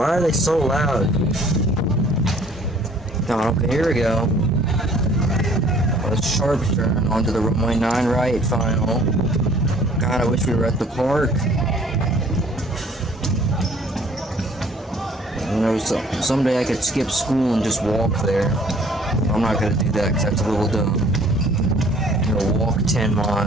are they so loud? Oh, okay, here we go. A sharp turn onto the runway 9 right final. God, I wish we were at the park. You know, someday I could skip school and just walk there. I'm not gonna do that because that's a little dumb. You know, walk 10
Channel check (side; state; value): both; normal; correlation 0.55